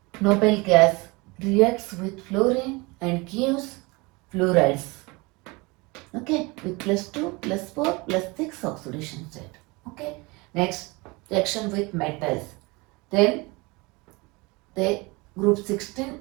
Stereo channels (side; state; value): left; quieter; 25.5 dB